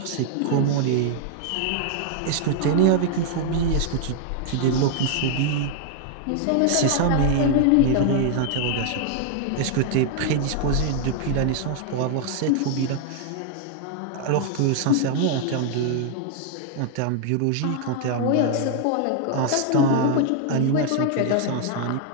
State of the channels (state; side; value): different; both; correlation 0.00